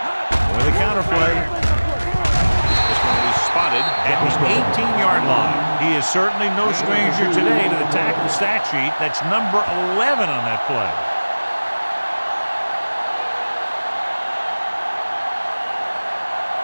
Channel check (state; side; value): inverted; both; correlation -1.00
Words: With a counter play. This one will be spotted at the 18-yard line. He is certainly no stranger today to the tackle stat sheet. That's number 11 on that play.